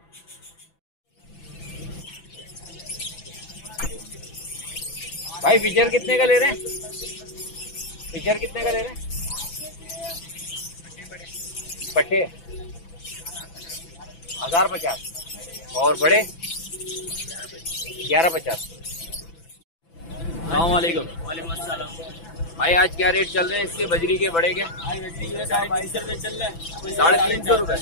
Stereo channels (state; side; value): late; right; 6.0 ms